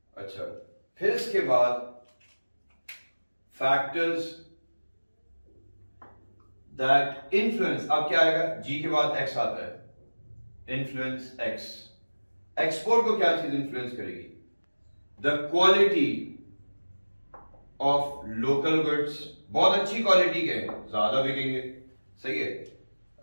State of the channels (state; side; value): inverted; both; correlation -1.00